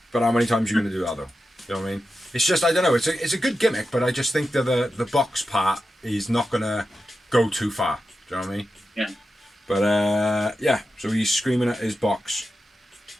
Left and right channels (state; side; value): normal; both; correlation 0.90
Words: But how many times are you going to do that, though? You know what I mean? It's just, I don't know. It's a good gimmick, but I just think that the box part is not going to go too far. Do you know what I mean? Yeah. But yeah, so he's screaming at his box